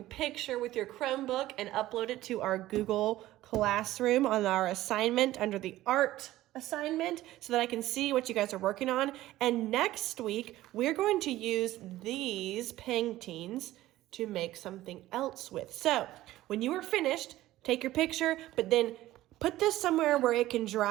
picture with your Chromebook and upload it to our Google Classroom on our assignment under the art assignment so that I can see what you guys are working on. And next week, we're going to use these paintings to make something else with. So when you are finished, take your picture, but then put this somewhere where it can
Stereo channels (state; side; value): quieter; left; 15.6 dB